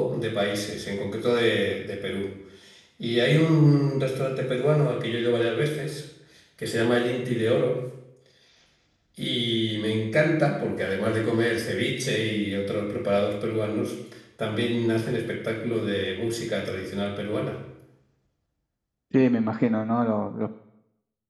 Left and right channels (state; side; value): identical; both; correlation 1.00